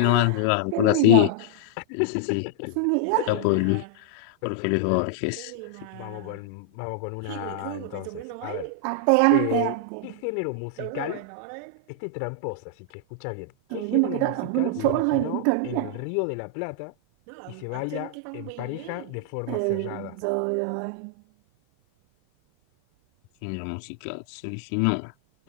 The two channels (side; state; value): both; different; correlation -0.01